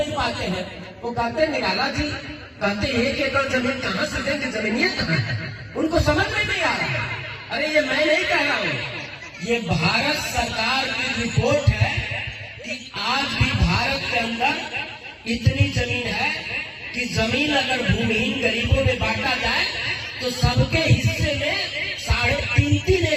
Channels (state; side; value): identical; both; correlation 1.00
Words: पाते हैं, वो कहते निराला जी कहते 1 एकड़ जमीन कहां से देंगे, जमीनियां कहां है, उनको समझ में नहीं आ रहा। अरे ये मैं नहीं कह रहा हूं, ये भारत सरकार की रिपोर्ट है कि आज भी भारत के अंदर इतनी जमीन है कि जमीन अगर भूमिहीन गरीबों में बांटा जाए तो सबके हिस्से में 3.5